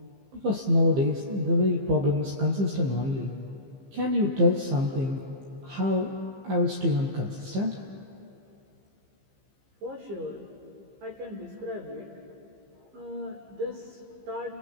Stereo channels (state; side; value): late; left; 15 ms